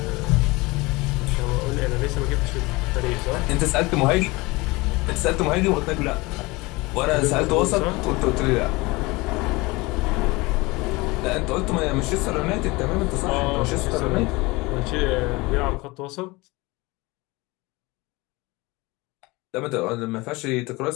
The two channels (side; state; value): right; quieter; 23.3 dB